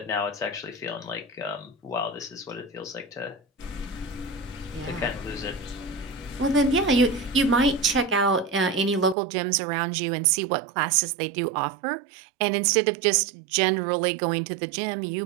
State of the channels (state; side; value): drops out; left; at 9.2 s